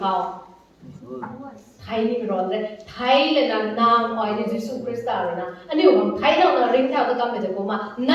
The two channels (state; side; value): identical; both; correlation 1.00